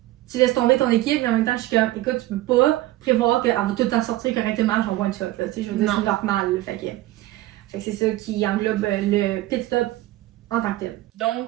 tu laisses tomber ton équipe, mais en même temps, je suis comme, écoute, tu peux pas prévoir qu'elle va tout le temps sortir correctement, genre one shot, là, je veux dire, c'est normal, là, fait que c'est ça qui englobe le pit stop en tant que tel.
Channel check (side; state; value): left; quieter; 16.6 dB